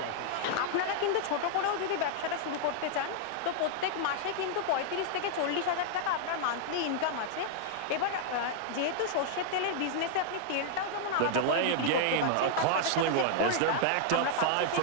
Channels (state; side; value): different; both; correlation -0.01